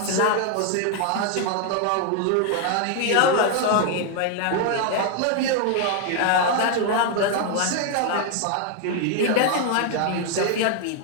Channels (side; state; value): both; different; correlation 0.00